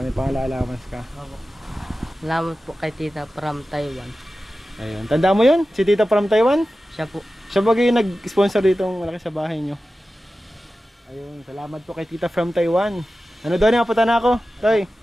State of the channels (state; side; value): normal; both; correlation 0.94